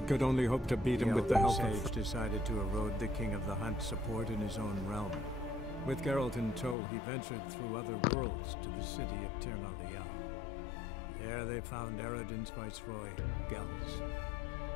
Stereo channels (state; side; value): drops out; right; at 6.8 s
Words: could only hope to beat him with the help of... decided to erode the King of the Hunt's support in his own realm. With Geralt in tow, he ventured through other worlds to the city of Tir na Lial. There they found Eredin's viceroy, Gels.